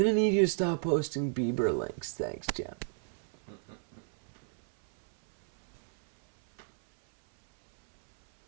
to need you to stop posting Bieber links. Thanks, Jim.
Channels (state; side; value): silent; left; 57 dB below the other